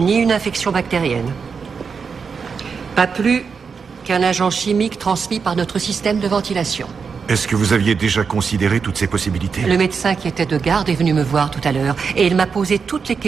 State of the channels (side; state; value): left; quieter; 5.7 dB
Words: une infection bactérienne. Pas plus avec un agent chimique transmis par notre système de ventilation. Est-ce que vous aviez déjà considéré toutes ces possibilités? Le médecin qui était de garde est venu me voir tout à l'heure et il m'a posé toutes les